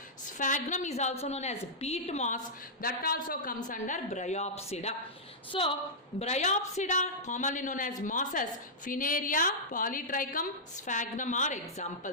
Sphagnum is also known as peat moss. That also comes under Bryopsida. So, Bryopsida, commonly known as mosses, Funaria, Polytrichum, Sphagnum are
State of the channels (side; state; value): both; normal; correlation -0.11